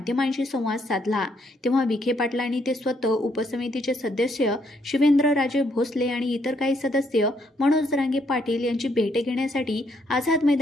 संवाद साधला। तेव्हा विखे पाटलांनी ते स्वतः, उपसमितीचे सदस्य शिवेंद्रराजे भोसले आणि इतर काही सदस्य मनोज जरांगे पाटील यांची भेट घेण्यासाठी आझाद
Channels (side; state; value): both; normal; correlation 0.72